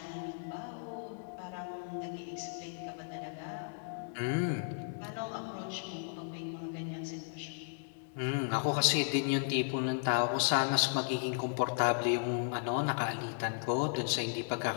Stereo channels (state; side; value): silent; right; digital silence